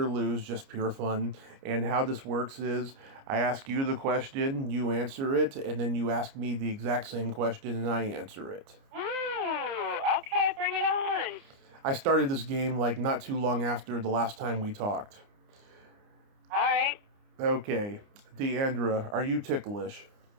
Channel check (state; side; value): late; left; 29 ms